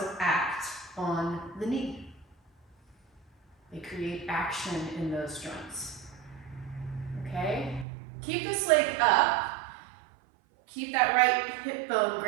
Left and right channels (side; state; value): left; drops out; at 7.9 s